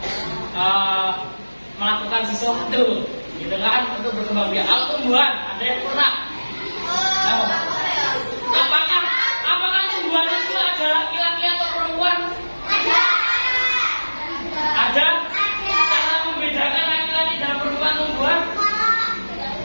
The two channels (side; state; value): both; inverted; correlation -1.00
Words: melakukan sesuatu gitu kan untuk berkembang biak. Kalau tumbuhan ada yang pernah? Apakah tumbuhan itu ada laki-laki atau perempuan? Ada? Cara membedakan laki-laki dan perempuan tumbuhan?